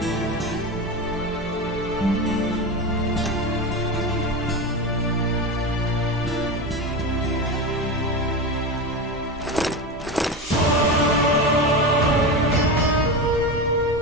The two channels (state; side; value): normal; both; correlation 0.21